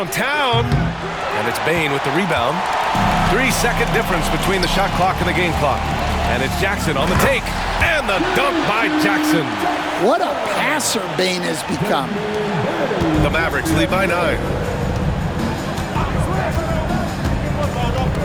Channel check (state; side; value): identical; both; correlation 1.00